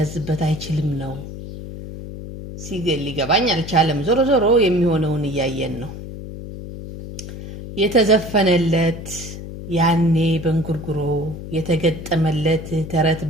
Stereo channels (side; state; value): left; noise; hum, 11 dB below the sound